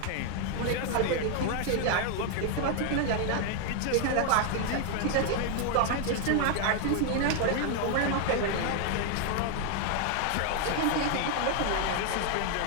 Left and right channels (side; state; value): both; different; correlation 0.00